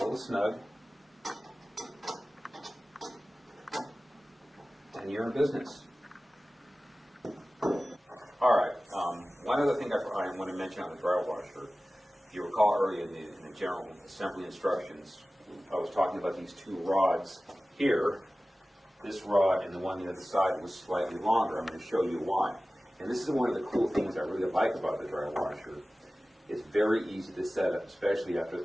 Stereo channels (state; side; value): normal; both; correlation 0.97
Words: snug, and you're in business. All right. One other thing I want to mention on the dryer washer. If you recall earlier in the general assembly instructions, I was talking about these two rods here. This rod and the one on the other side was slightly longer. I'm going to show you why. And this is one of the cool things I really like about the dryer washer. It's very easy to set up, especially after